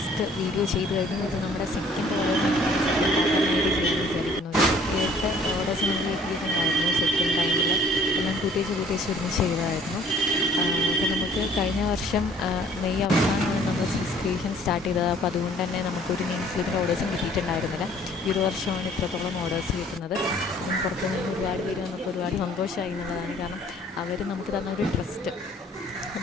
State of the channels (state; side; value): normal; both; correlation 0.56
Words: വീഡിയോ ചെയ്ത് കഴിഞ്ഞു. ഇത് നമ്മുടെ സെക്കൻഡ് ഓർഡേഴ്സാണ്. സെക്കൻഡ് പാർട്ടായിട്ട് ചെയ്യാമെന്ന് വിചാരിക്കുന്നു. ഒരു 8 ഓർഡേഴ്സ് നമ്മൾ കിട്ടിയിട്ടുണ്ടായിരുന്നു സെക്കൻഡ് ടൈമിൽ. എല്ലാം കൂട്ടിച്ച് ഒരുമിച്ച് ചെയ്തതായിരുന്നു. അപ്പോൾ നമുക്ക് കഴിഞ്ഞ വർഷം മെയ് അവസാനമാണ് നമ്മൾ സീസ് ക്രിയേഷൻ സ്റ്റാർട്ട് ചെയ്തത്. അപ്പോൾ അതുകൊണ്ട് തന്നെ നമുക്കൊരു നെയിം സ്ലിപ്പിൻ്റെ ഓർഡേഴ്സും കിട്ടിയിട്ടുണ്ടായിരുന്നില്ല. ഈ ഒരു വർഷമാണ് ഇത്രത്തോളം ഓർഡേഴ്സ് കിട്ടുന്നത്. പുറത്തു നിന്ന് ഒരുപാട് പേര് വന്നപ്പോൾ ഒരുപാട് സന്തോഷമായി എന്നുള്ളതാണ്. കാരണം അവർ നമുക്ക് തന്ന ഒരു ട്രസ്റ്റ്